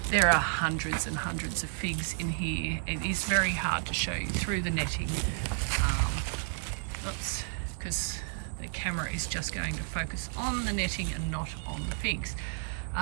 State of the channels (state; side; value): silent; left; 57 dB below the other